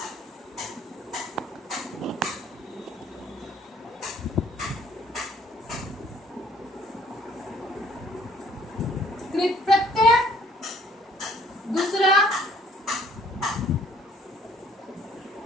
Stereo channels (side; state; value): both; normal; correlation 0.59